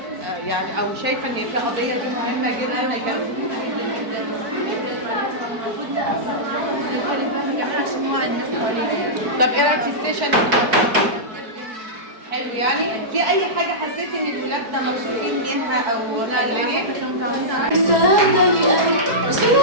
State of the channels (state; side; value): late; left; 4.6 ms